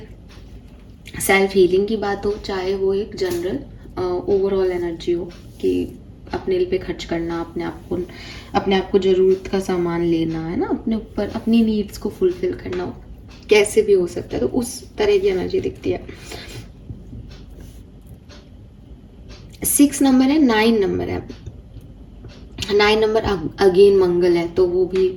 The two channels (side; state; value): both; identical; correlation 1.00